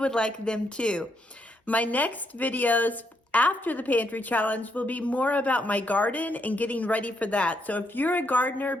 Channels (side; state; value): both; normal; correlation 0.77